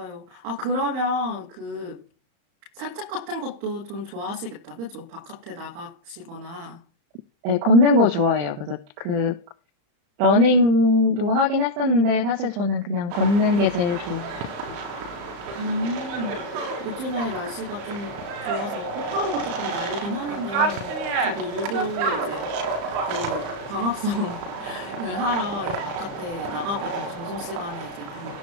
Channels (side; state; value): left; late; 35 ms